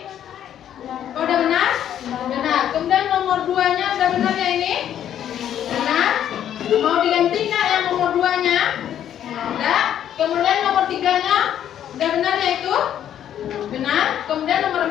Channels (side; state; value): right; quieter; 10.4 dB